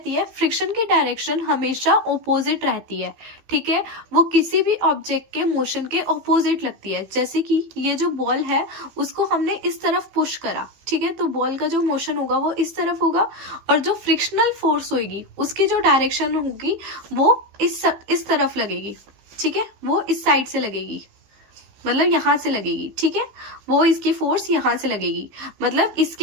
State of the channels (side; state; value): left; late; 15 ms